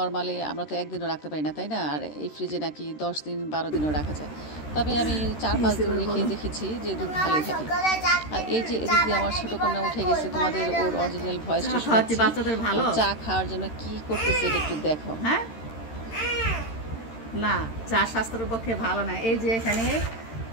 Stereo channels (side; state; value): right; late; 13 ms